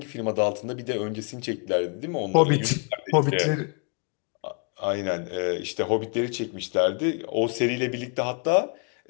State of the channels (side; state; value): right; quieter; 37.1 dB